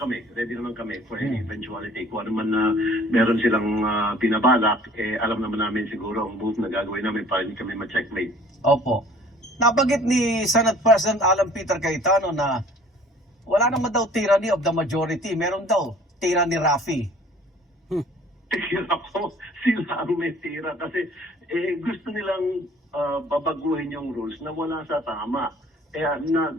for any eventuality. Kung ano man na meron silang binabalak, alam naman namin siguro ang move na gagawin namin para hindi kami ma-checkmate. Opo. Nabanggit ni Senate President Alan Peter Cayetano na wala naman daw tyranny of the majority. Meron daw tyranny Raffy. Tira ko, sila ang may tira kasi gusto nilang babaguhin yung rules na wala sa tama. Kaya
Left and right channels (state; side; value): normal; both; correlation 0.52